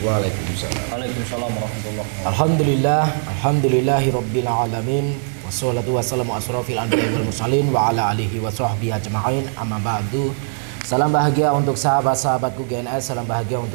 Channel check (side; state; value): left; silent; digital silence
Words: Waalaikumsalam warahmatullahi wabarakatuh. Alhamdulillahirabbil alamin. Wassalatu wassalamu asrofil anbiya'i wal mursalin wa ala alihi wa sahbihi ajma'in. Amma ba'du. Salam bahagia untuk sahabat-sahabatku GNS, salam bahagia